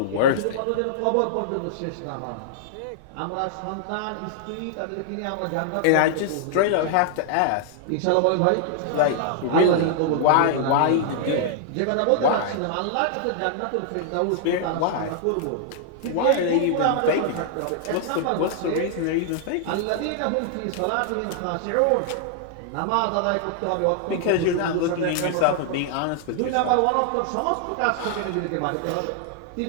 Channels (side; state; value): both; different; correlation -0.01